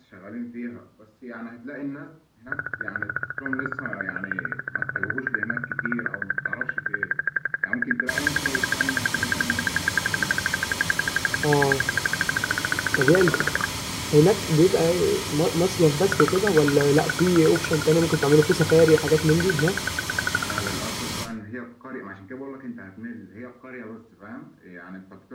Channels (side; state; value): both; identical; correlation 1.00